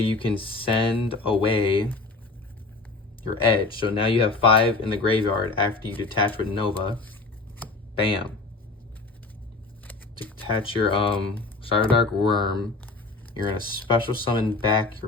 can send away your edge. So now you have 5 in the graveyard after you detach with Nova. Bam. Detach your Cyberdark Worm. You're going to special summon back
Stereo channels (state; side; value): quieter; right; 3.5 dB